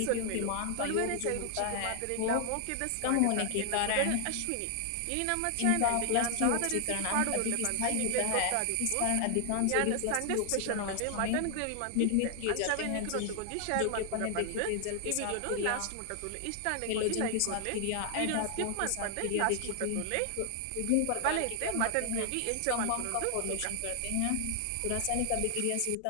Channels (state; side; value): different; both; correlation 0.00